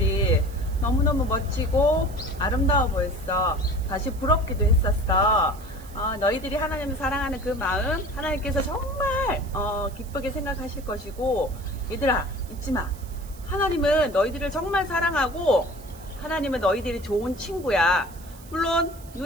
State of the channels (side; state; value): right; noise; hiss, 22 dB below the sound